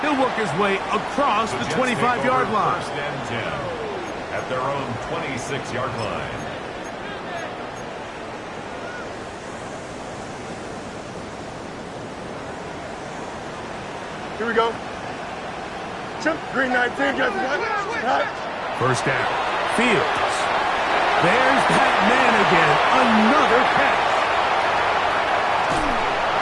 He'll work his way across the 25-yard line. First and 10 at their own 26-yard line. Here we go. Chip, green 19, got the First down. Fields. There's that man again. Another catch.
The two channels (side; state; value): both; identical; correlation 1.00